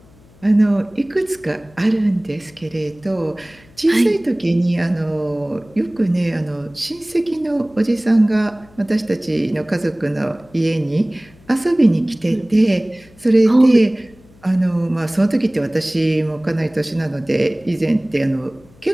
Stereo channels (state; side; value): noise; left; hum, 27 dB below the sound